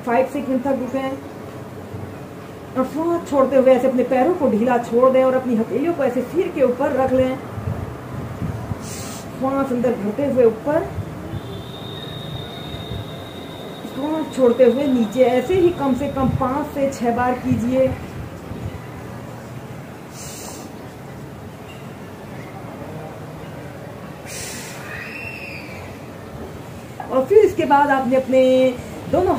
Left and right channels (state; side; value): identical; both; correlation 1.00